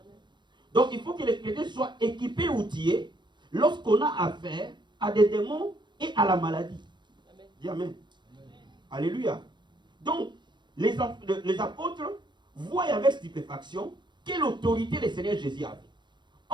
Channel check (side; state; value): left; late; 0.22 ms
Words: Donc il faut que les chrétiens soient équipés, outillés, lorsqu'on a affaire à des démons et à la maladie. Amen. Dis Amen. Amen. Alléluia. Donc, les apôtres voient avec stupéfaction quelle autorité le Seigneur Jésus avait.